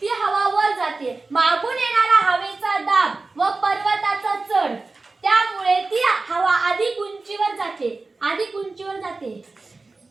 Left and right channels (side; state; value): left; quieter; 3.6 dB